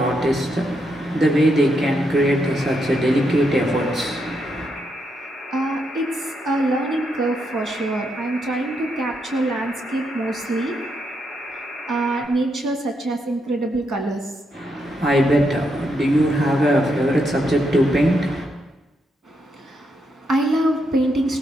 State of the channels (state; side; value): normal; both; correlation 0.80